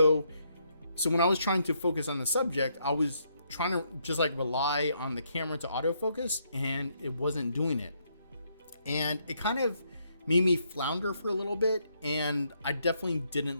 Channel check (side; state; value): both; inverted; correlation -0.75